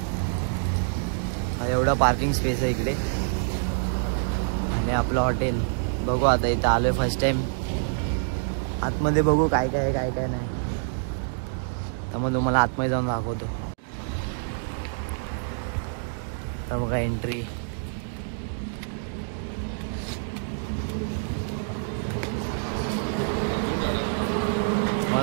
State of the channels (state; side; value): silent; left; digital silence